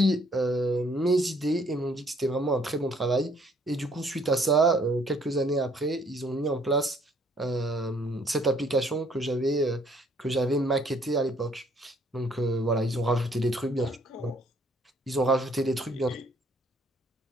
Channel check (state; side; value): normal; both; correlation 0.63